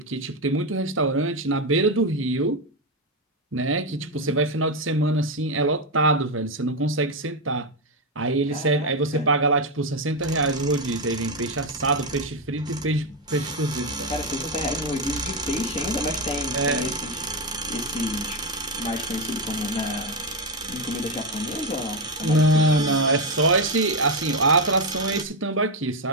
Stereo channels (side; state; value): both; normal; correlation 0.08